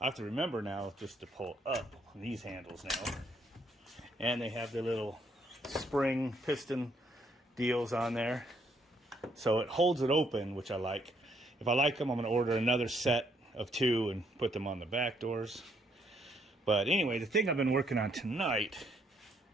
have to remember now just to pull up these handles now. And they have the little spring piston deals on there. So it holds it open, which I like. If I like them, I'm going to order another set of 2 and put them on the back doors. But anyway, the thing I've been working on tonight,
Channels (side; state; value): both; normal; correlation 0.70